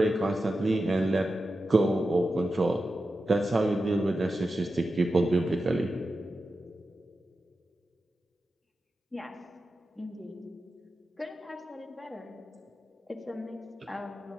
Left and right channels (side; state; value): both; normal; correlation 0.91